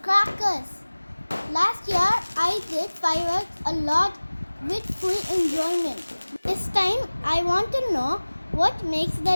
crackers. Last year I did fireworks a lot with full enjoyment. This time I want to know what makes the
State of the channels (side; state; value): both; inverted; correlation -1.00